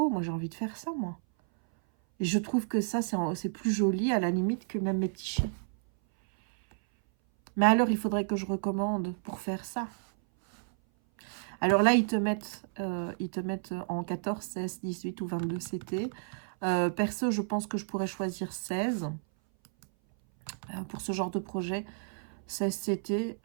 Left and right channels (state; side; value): silent; left; 57 dB below the other